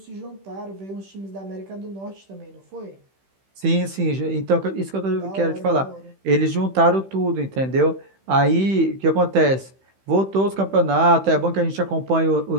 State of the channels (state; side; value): late; left; 15 ms